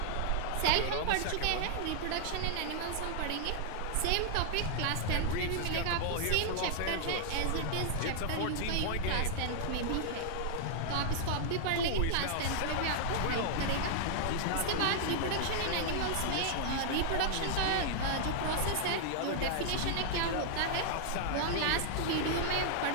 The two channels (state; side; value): different; both; correlation -0.01